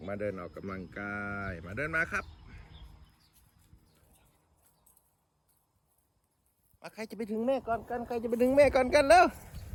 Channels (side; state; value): both; identical; correlation 1.00